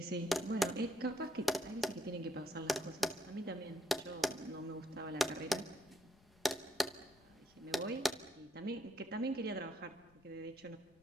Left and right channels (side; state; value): left; noise; rumble, 27 dB below the sound